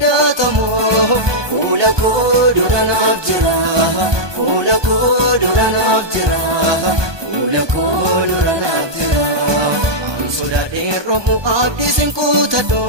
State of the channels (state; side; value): late; left; 1.2 ms